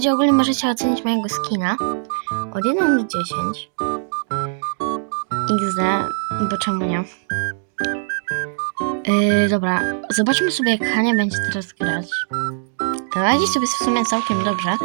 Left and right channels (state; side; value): silent; left; 65 dB below the other